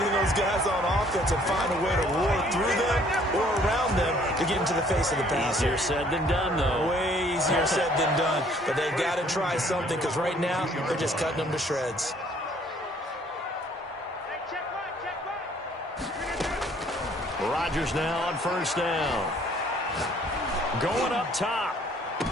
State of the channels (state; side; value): normal; both; correlation 0.60